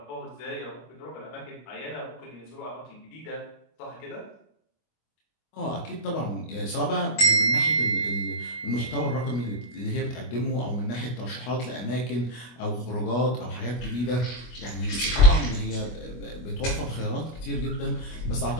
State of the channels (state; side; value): late; right; 25 ms